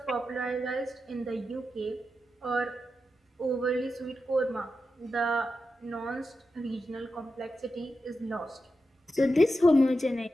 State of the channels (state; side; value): normal; both; correlation 0.89